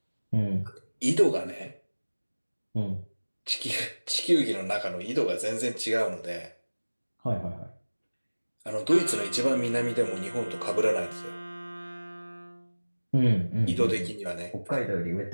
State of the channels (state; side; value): inverted; both; correlation -1.00